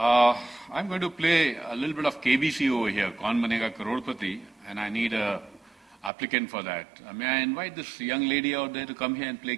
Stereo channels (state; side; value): drops out; left; at 6.1 s